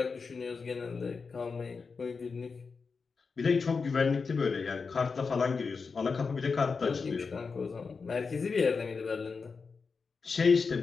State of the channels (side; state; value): right; quieter; 4.9 dB